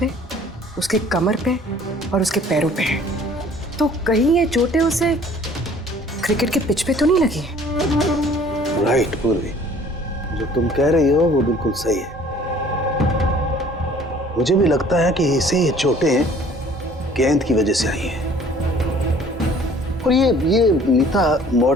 उसके कमर पे और उसके पैरों पे है। तो कहीं ये चोटें उसे क्रिकेट के पिच पे तो नहीं लगी है? राइट पूर्वी, जो तुम कह रही हो वो बिल्कुल सही है। मुझे भी लगता है कि इसे ये चोटें गेंद की वजह से आई हैं। और ये नीता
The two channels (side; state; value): both; normal; correlation 0.53